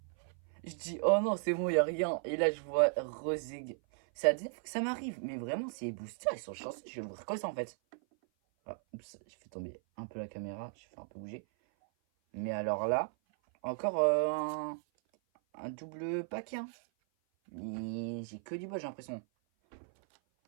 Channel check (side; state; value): left; silent; 54 dB below the other